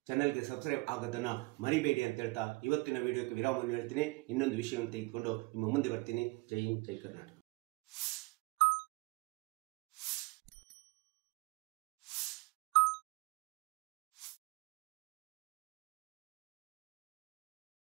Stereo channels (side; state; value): left; quieter; 24.3 dB